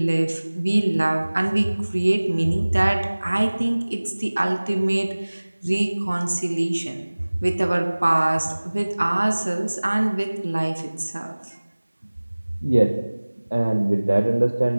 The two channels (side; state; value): both; inverted; correlation -1.00